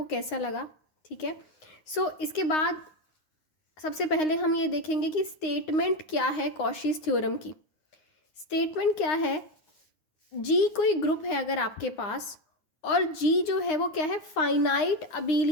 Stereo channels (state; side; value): late; right; 9.7 ms